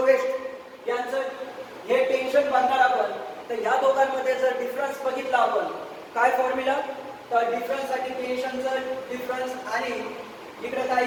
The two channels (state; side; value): identical; both; correlation 1.00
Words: यांचं हे टेन्शन बघणार आपण. तर या दोघांमध्ये जर डिफरन्स बघितला आपण काय फॉर्म्युला? तर डिफरन्स साठी टेन्शनचं डिफरन्स आणि इकडे काय